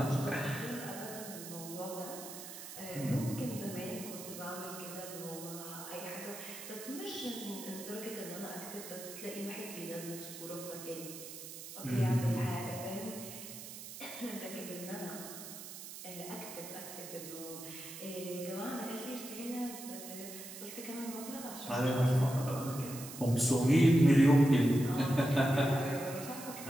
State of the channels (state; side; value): noise; right; hiss, 11 dB below the sound